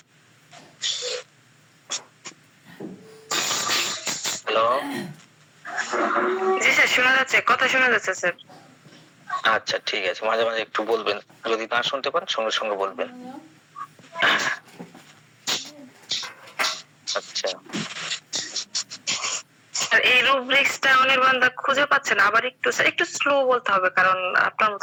হ্যালো, জি স্যার শোনা যাচ্ছে, কথা শোনা যাচ্ছে স্যার। আচ্ছা ঠিক আছে, মাঝে মাঝে একটু বলবেন, যদি না শুনতে পান সঙ্গে সঙ্গে বলবেন। আচ্ছা, আর এই রুব্রিক্সটা অনির্বাণদা খুঁজে পাচ্ছে না, আবার একটু স্লো বলতে হবে, কারণ আপনার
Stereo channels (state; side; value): identical; both; correlation 1.00